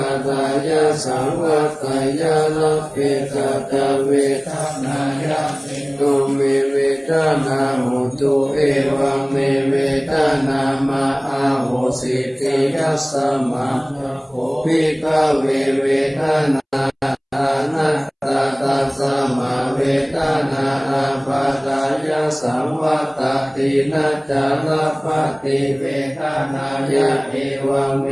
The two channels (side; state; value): both; identical; correlation 1.00